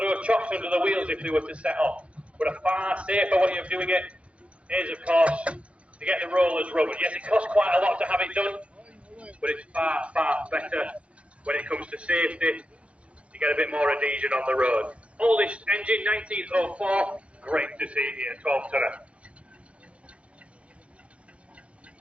chocks under the wheels if they were to set off. But a far safer way of doing it is, of course, to get the rollers rubbered. Yes, it costs quite a lot to have it done, but it's far, far better when it comes to safety. You get a bit more adhesion on the road. Oldest engine, 1904. Great to see it here, 12-tonner.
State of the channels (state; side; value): late; left; 0.062 ms